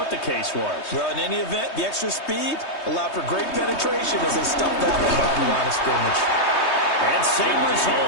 the case was. Well, in any event, the extra speed allowed for great penetration as they stuffed that one behind the line of scrimmage. And same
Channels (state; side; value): late; right; 3.2 ms